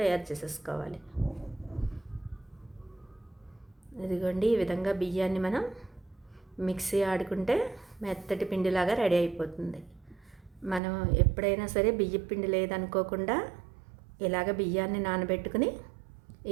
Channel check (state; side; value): drops out; left; at 10.8 s